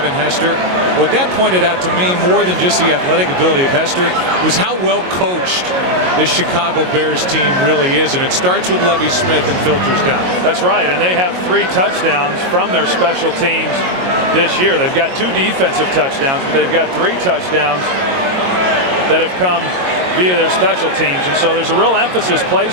Hester. What that pointed out to me, more than just the athletic ability of Hester, was how well coached this Chicago Bears team really is, and it starts with Lovie Smith and filters down. That's right, and they have 3 touchdowns from their special teams this year. They've got 2 defensive touchdowns, but they've got 3 touchdowns that have come via their special teams, and so there's a real emphasis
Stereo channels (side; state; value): left; late; 22 ms